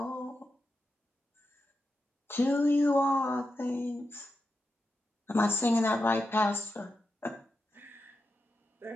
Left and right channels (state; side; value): normal; both; correlation 0.88